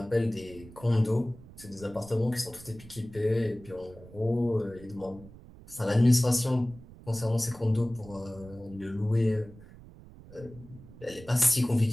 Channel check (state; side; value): noise; right; rumble, 19 dB below the sound